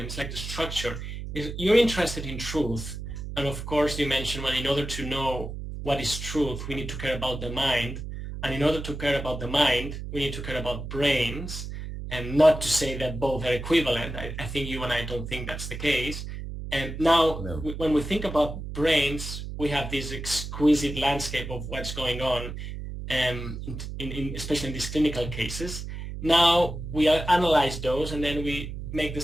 It's like the structure. Is you're interested in truth, and of course you mentioned, well, in order to know what is truth, we need to care about the mind, and in order to care about the mind, we need to care about brains, and not to say that both are equivalent. I think you and I don't think that's the case. And now, No. when we think about brains, we have this exquisite landscape of what's going on, especially in these clinical cases. Now we analyze those and then we make the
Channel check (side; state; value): right; noise; hum, 7 dB below the sound